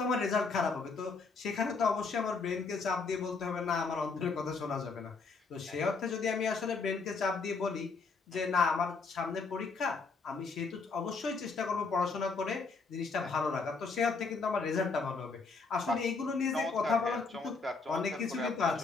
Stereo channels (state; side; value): quieter; right; 4.4 dB